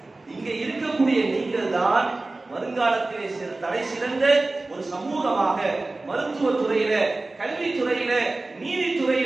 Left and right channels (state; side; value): quieter; left; 3.1 dB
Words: இங்க இருக்கக்கூடிய நீங்கள் தான் வருங்காலத்திலே தலை சிறந்த ஒரு சமூகமாக மருத்துவத்துறையில, கல்வித்துறையில,